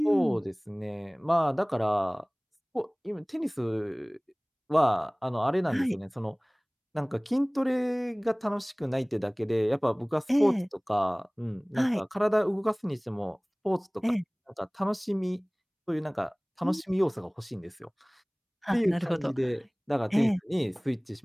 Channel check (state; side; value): identical; both; correlation 1.00